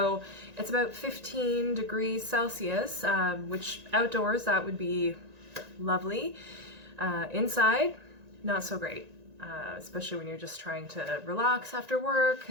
it's about 15 degrees Celsius, which outdoors that would be lovely. Inside, not so great, especially when you're just trying to relax after work,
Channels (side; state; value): left; late; 1.9 ms